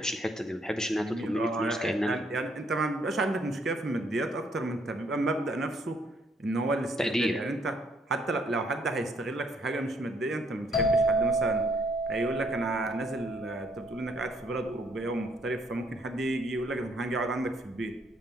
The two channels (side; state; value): both; normal; correlation 0.69